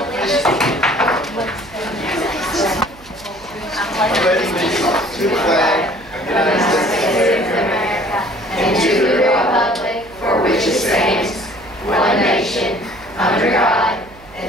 allegiance. I'm pledging allegiance to the flag of the United States of America and to the republic for which it stands, one nation, under God,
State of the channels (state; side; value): noise; right; hum, 23 dB below the sound